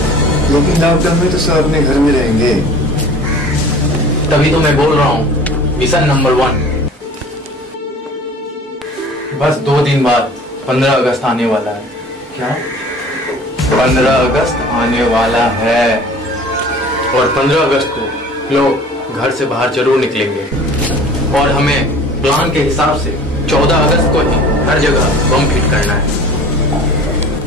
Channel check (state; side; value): normal; both; correlation 0.44